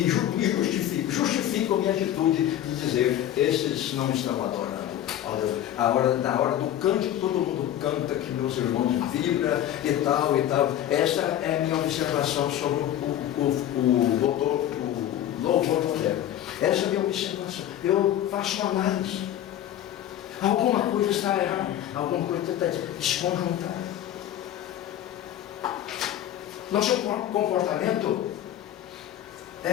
justifico a minha atitude de dizer, esses não estão adorando ao Deus. Na hora do cântico, todo mundo canta, que meus irmãos vibram e tal e tal. Essa é a minha observação sobre o louvor moderno. Essa é a minha observação. Eu faço uma análise. Alguma coisa está errada, alguma coisa está desconjuntada. Nosso comportamento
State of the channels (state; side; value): quieter; right; 11.7 dB